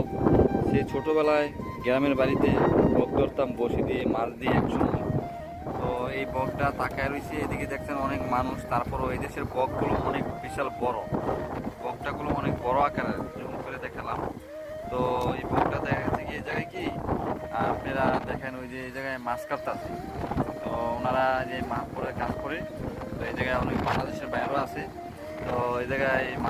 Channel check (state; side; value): identical; both; correlation 1.00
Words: সে ছোটবেলায় গ্রামের বাড়িতে বক ধরতাম বসি দিয়ে মাছ দিয়ে একসঙ্গে। তো এই বকটা তাকায় রয়েছে, এদিকে দেখছেন অনেক মানুষ। তারপরও এই দেশের বকগুলো অনেক বিশাল বড়, বকটাগুলো অনেক বড় আকারের, জুম করে দেখালাম। তো এই বকটা দেখা গেছে কি এই জায়গায় কি আপনারা দেখেন ওই যে এই জায়গায় মাছ কাটতেছে। তো ওনারা যে মাছ পরে কাজ করে, তো এই জায়গায় অনেক বাংলাদেশের বাইরেও আছে। তো এই জায়গায়